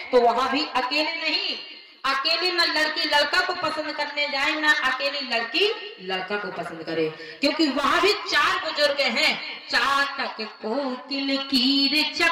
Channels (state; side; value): identical; both; correlation 1.00